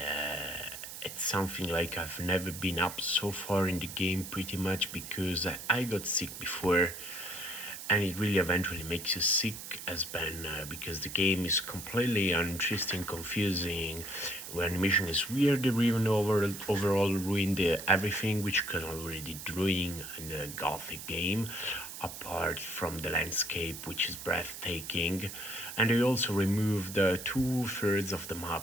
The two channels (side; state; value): right; noise; hiss, 10 dB below the sound